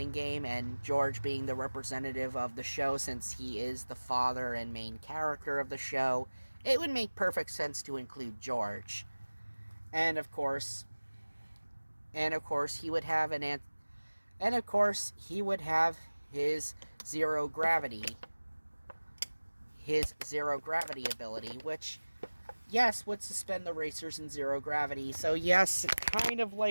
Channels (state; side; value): inverted; both; correlation -1.00